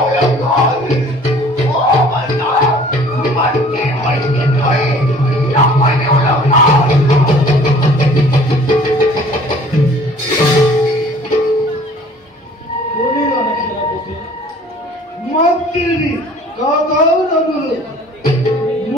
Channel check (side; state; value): both; normal; correlation 0.52